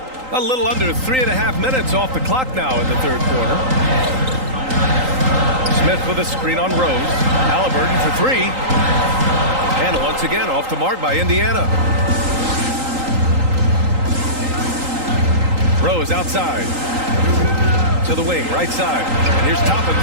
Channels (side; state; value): left; late; 3.8 ms